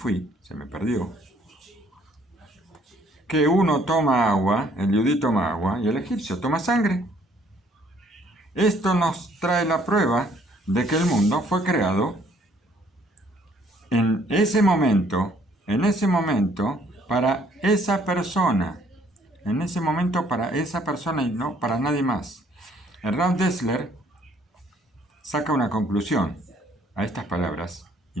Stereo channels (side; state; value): both; normal; correlation 0.63